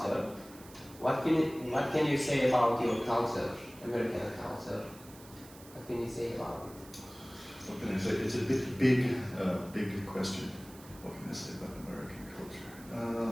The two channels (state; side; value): noise; right; hiss, 20 dB below the sound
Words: What can you say about your culture? American culture? What can you say about it? What can I say? It's a big question. What can I say about American